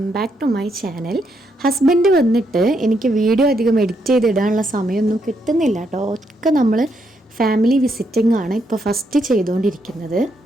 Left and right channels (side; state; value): both; normal; correlation 0.77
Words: back to my channel. Husband വന്നിട്ട് എനിക്ക് വീഡിയോ അധികം എഡിറ്റ് ചെയ്തിടാനുള്ള സമയമൊന്നും കിട്ടുന്നില്ല കേട്ടോ. ഒക്കെ നമ്മൾ ഫാമിലി വിസിറ്റിംഗ് ആണ് ഇപ്പോൾ ഫസ്റ്റ് ചെയ്തുകൊണ്ടിരിക്കുന്നത്.